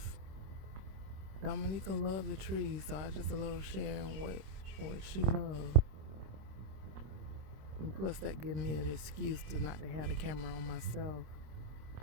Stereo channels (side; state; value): left; late; 26 ms